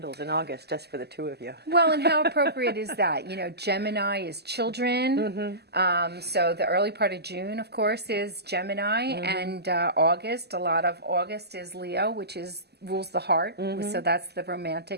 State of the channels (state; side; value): late; left; 0.47 ms